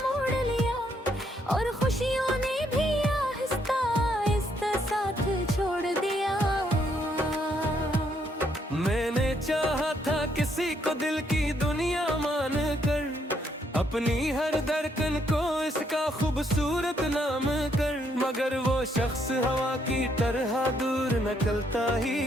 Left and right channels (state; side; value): normal; both; correlation 0.72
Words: मोड़ लिया, और खुशियों ने भी आहिस्ता आहिस्ता साथ छोड़ दिया। मैंने चाहा था किसी को दिल की दुनिया मान कर, अपनी हर धड़कन को इसका खूबसूरत नाम कर, मगर वो शख्स हवा की तरह दूर निकलता ही